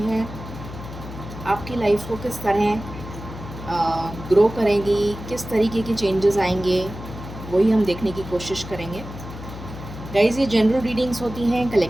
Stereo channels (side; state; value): left; noise; hum, 11 dB below the sound